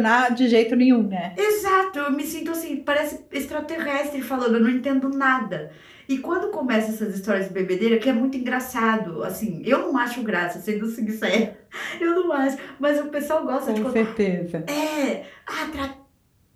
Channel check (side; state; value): both; identical; correlation 1.00